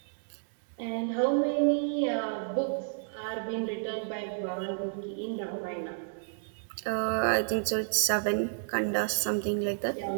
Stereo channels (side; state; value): left; silent; digital silence